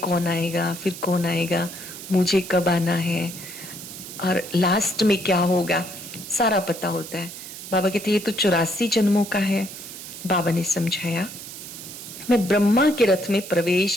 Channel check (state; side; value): noise; right; hiss, 12 dB below the sound